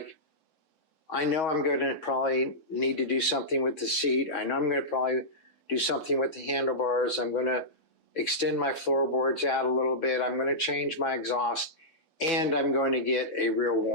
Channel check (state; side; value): late; right; 3.6 ms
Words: I know I'm going to probably need to do something with the seat. I know I'm going to probably do something with the handlebars. I'm going to extend my floorboards out a little bit. I'm going to change my exhaust, and I'm going to get a real